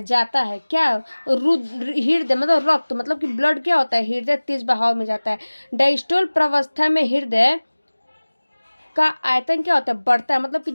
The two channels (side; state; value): both; inverted; correlation -1.00